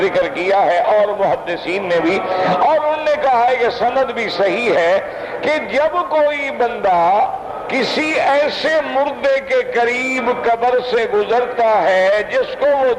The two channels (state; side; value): identical; both; correlation 1.00